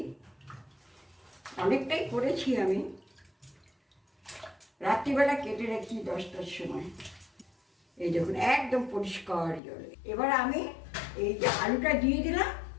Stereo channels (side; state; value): right; drops out; at 9.6 s